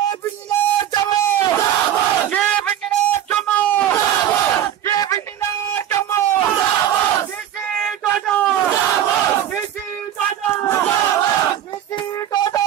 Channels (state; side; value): quieter; left; 11.0 dB